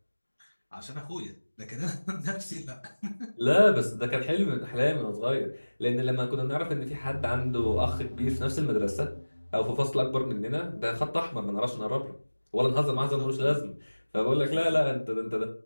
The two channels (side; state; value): both; inverted; correlation -1.00